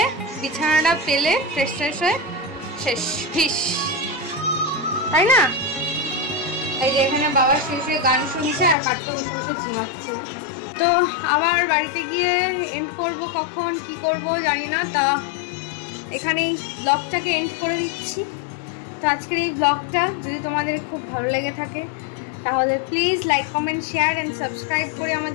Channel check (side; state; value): right; drops out; at 8.8 s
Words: বিছানাটা পেলে ফ্রেশ ফ্রেশ হয়ে শেষ ফিস, তাই না? এই যে এখানে বাবা শুয়ে গান শুনছে আর বাড়িতে বসে বসে ঝিমাচ্ছে। তো আবার বাড়িতে গিয়ে এন্ড করব, কখন কি করব জানি না। তা এখানেই ব্লগটাকে এন্ড করে দিচ্ছি। তো আজকের এই ব্লগটা যদি তোমাদের খুব ভালো লেগে থাকে তাহলে please like comment share and subscribe করে